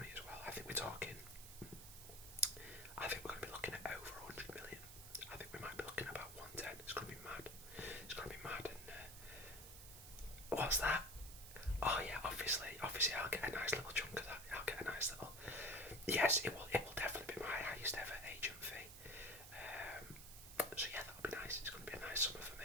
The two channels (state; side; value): noise; right; hiss, 13 dB below the sound